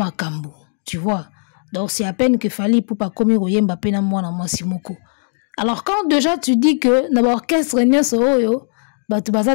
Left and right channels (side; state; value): right; silent; digital silence